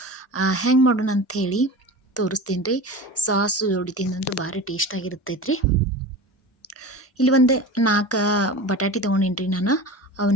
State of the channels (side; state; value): both; normal; correlation 0.32